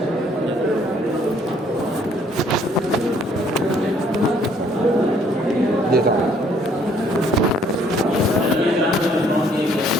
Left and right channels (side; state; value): both; normal; correlation 0.63